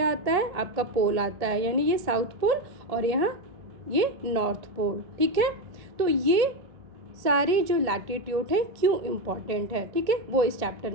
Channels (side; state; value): left; late; 1.7 ms